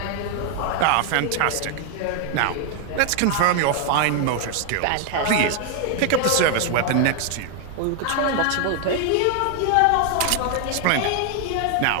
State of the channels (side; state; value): both; different; correlation 0.01